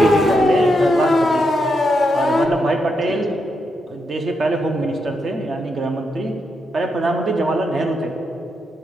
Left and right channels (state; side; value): normal; both; correlation 0.82